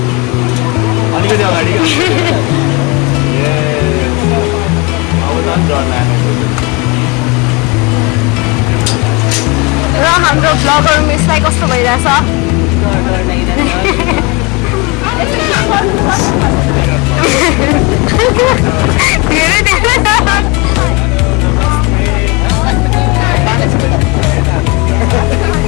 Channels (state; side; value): quieter; right; 27.2 dB